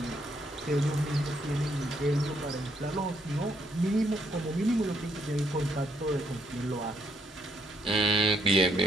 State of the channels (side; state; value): both; normal; correlation 0.72